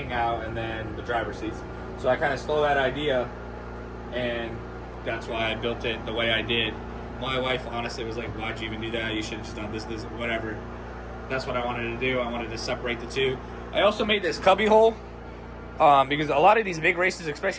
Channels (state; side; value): identical; both; correlation 1.00